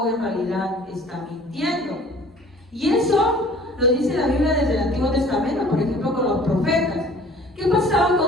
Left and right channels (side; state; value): both; normal; correlation 0.50